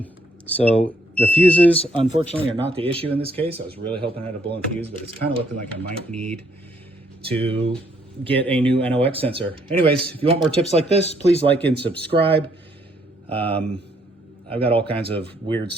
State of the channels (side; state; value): both; normal; correlation 0.69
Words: So the fuses, unfortunately, are not the issue in this case. I was really hoping I had a blown fuse, but it's kind of looking like I might need to get a new NOx sensor. Anyways, if you want more tips like this, please like and subscribe. I've got all kinds of weird